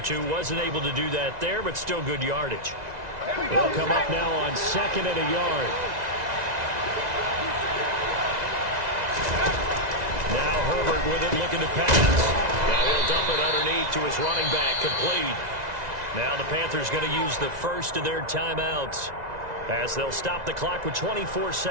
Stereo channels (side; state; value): left; late; 2.0 ms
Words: Wasn't able to do that there, but still good yardage. They'll come up now on 2nd and a yard. Now Herbert with it, looking to pass. Now he'll dump it underneath to his running back, complete. Now the Panthers going to use the first of their timeouts as they'll stop the clock with 24